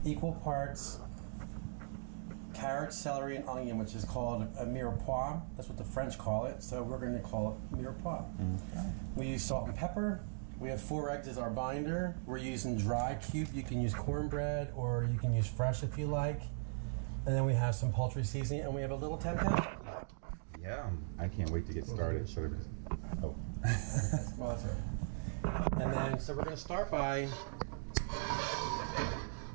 equal parts carrot, celery, and onion, which is called a mirepoix. That's what the French call it. So we're going to call it mirepoix. Okay. We use salt and pepper. We have 4 eggs as our binder. We're using dry cube. You can use cornbread or you can use fresh if you like. And then we have some poultry seasoning, and we have a little tempeh. Yeah, I can't wait to get started. Oh. Well, that's right. And then, so we're going to start by,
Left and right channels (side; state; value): left; silent; digital silence